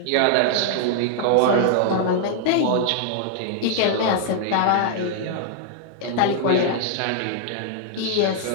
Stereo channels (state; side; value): different; both; correlation -0.01